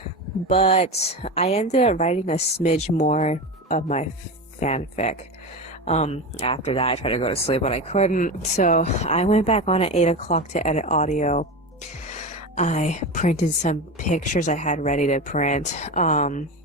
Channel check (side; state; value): both; normal; correlation 0.22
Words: but I ended up writing a smidge more of my fanfic. After that, I tried to go to sleep, but I couldn't. So I went back on at 8 o'clock to edit audio. I printed some pictures I had ready to print.